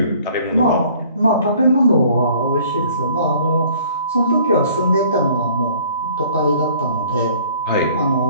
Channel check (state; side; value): inverted; both; correlation -0.54